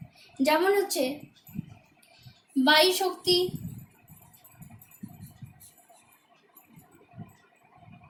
যেমন হচ্ছে বায়ু শক্তি,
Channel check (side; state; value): both; identical; correlation 1.00